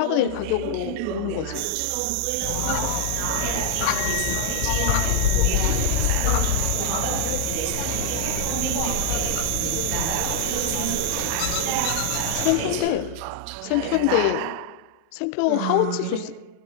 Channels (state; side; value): different; both; correlation -0.01